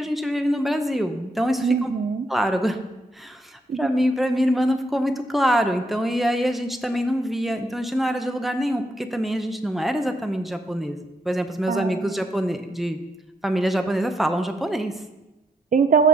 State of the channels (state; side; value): normal; both; correlation 0.78